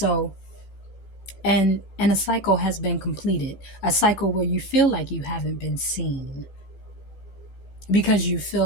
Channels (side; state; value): right; late; 14 ms